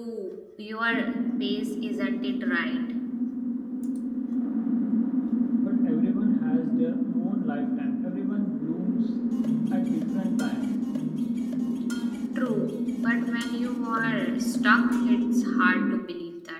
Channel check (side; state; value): both; identical; correlation 1.00